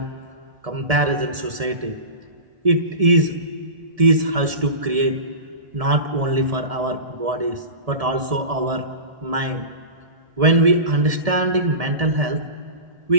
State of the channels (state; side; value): late; left; 1.7 ms